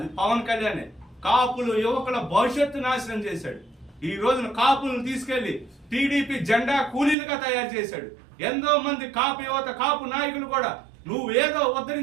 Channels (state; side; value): drops out; left; at 7.2 s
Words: పవన్ కళ్యాణ్. కాపులు యువకుల భవిష్యత్తు నాశనం చేశాడు. ఈ రోజున కాపులను తీసుకెళ్లి టీడీపీ జెండా కూలీలుగా తయారు చేశాడు. ఎంతో మంది కాపు యువత, కాపు నాయకులు కూడా నువ్వు ఏదో